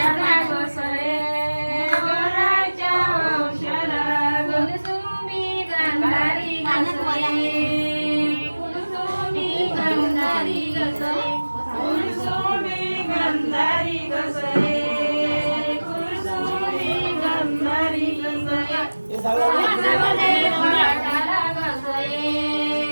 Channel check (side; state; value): both; inverted; correlation -1.00